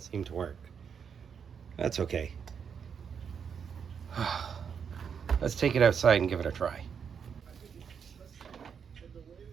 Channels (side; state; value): left; quieter; 7.0 dB